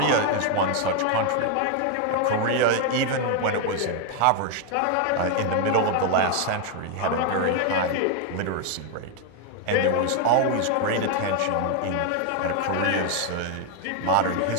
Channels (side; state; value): both; different; correlation 0.01